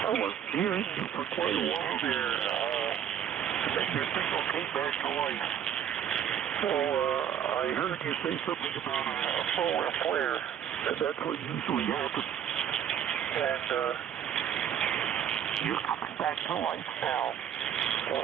I was hearing you for quite a while there. Then your signal came back to life. So I heard you say something about a forward flare, and that's what usually happens. And you're coming back to life now.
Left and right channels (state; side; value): quieter; left; 9.3 dB